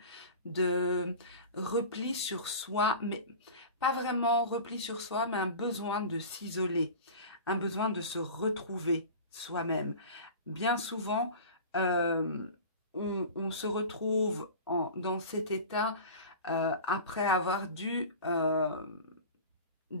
de repli sur soi, mais pas vraiment repli sur soi, mais un besoin de s'isoler. Un besoin de se retrouver soi-même. Bien souvent, on se retrouve dans cet état après avoir dû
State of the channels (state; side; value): inverted; both; correlation -0.35